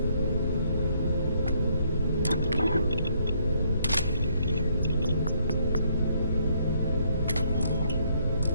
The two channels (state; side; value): inverted; both; correlation -0.69